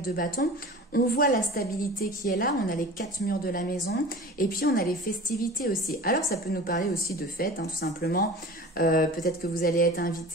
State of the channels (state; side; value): normal; both; correlation 0.38